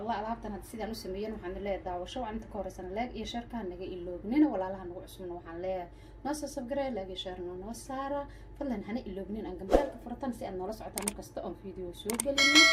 alaabtan had sidaan u sameeyeen waxaan leeyahay daawasho waxaan inta ka horeysan leeg iyo sharka naga iloognina walaalaha nagu cusubna waxaan leeyahay noo soo subscribe leeg iyo share noo saara fadlan hana iloognin aan gambalka furatan si aad noola socotaan markasta oo video soo gelino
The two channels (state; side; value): identical; both; correlation 1.00